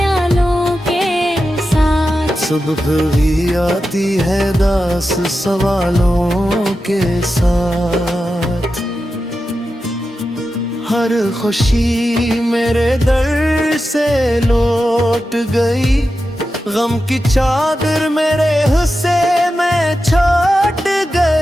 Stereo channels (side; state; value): both; normal; correlation 0.91